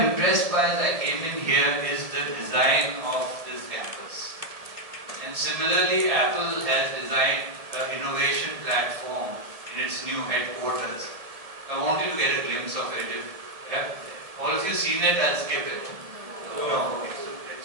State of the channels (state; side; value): late; left; 1.7 ms